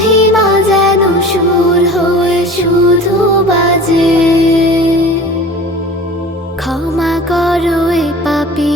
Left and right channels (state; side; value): normal; both; correlation 0.40